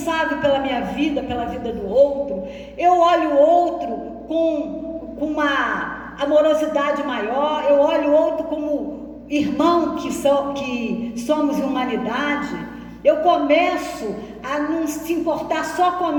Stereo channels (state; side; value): identical; both; correlation 1.00